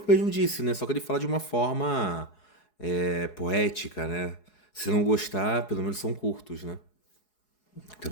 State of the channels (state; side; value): late; right; 4.7 ms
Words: mesmo disse, né? Só que ele fala de uma forma poética, né? Se não gostar, pelo menos são curtos, né? Então,